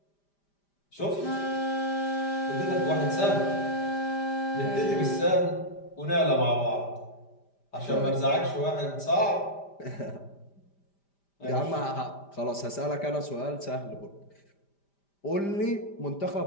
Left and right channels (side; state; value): right; late; 5.0 ms